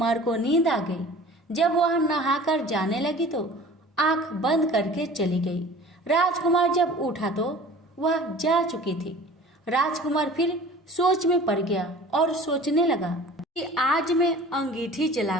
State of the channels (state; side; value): normal; both; correlation 0.44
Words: को नींद आ गई। जब वह नहाकर जाने लगी तो आंख बंद करके चली गई। राजकुमार जब उठा तो वह जा चुकी थी। राजकुमार फिर सोच में पड़ गया और सोचने लगा कि आज मैं अंगीठी